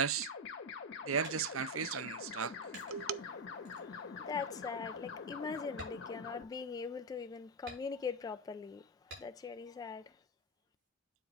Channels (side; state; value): both; normal; correlation 0.06